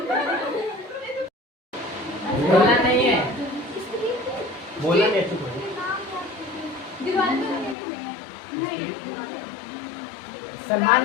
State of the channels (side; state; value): right; drops out; at 7.8 s